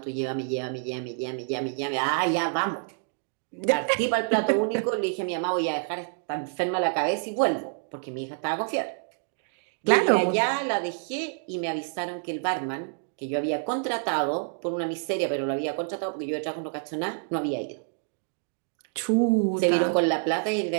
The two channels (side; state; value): left; silent; 60 dB below the other